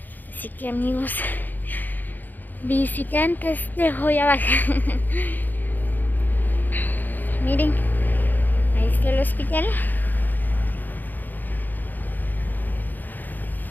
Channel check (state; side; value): late; right; 0.088 ms